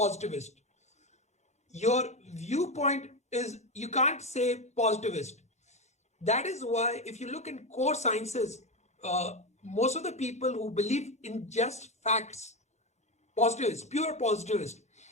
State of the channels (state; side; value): normal; both; correlation 0.15